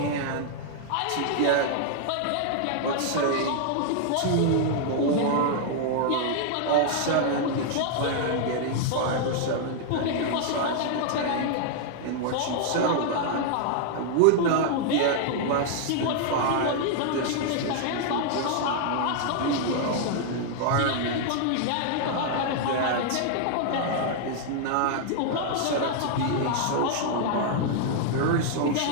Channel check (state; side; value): different; both; correlation 0.00